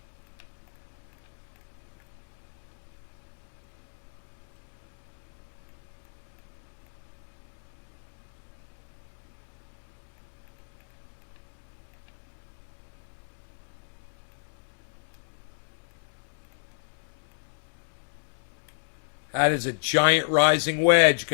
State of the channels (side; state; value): right; silent; digital silence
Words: That is a giant rising wedge,